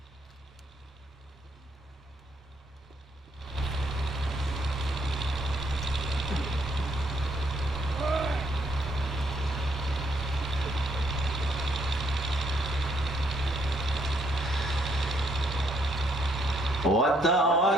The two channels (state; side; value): normal; both; correlation 0.71